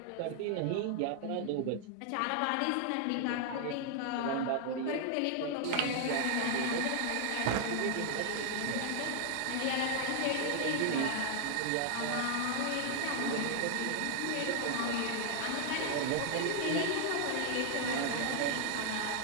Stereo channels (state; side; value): different; both; correlation 0.00